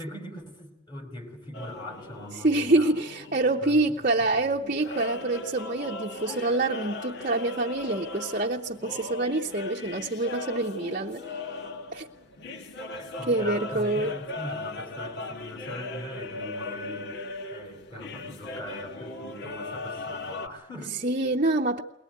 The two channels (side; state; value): both; normal; correlation 0.15